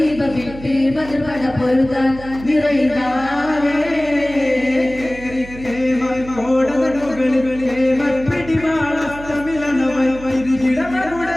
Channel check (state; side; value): noise; right; hum, 15 dB below the sound